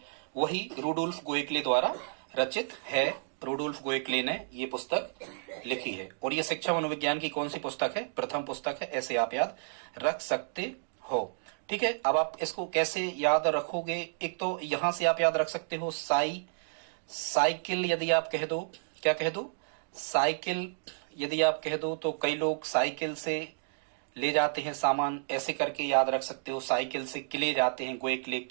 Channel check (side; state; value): left; silent; digital silence